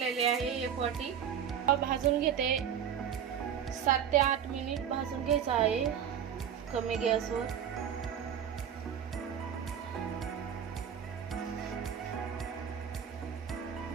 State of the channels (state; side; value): quieter; left; 8.6 dB